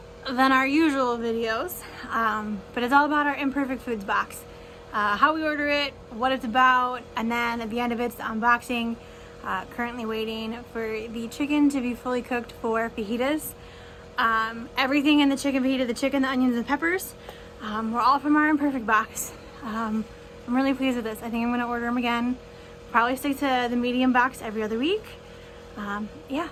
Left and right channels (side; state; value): both; identical; correlation 1.00